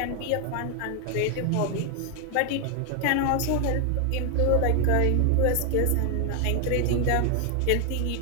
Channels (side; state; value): both; different; correlation 0.00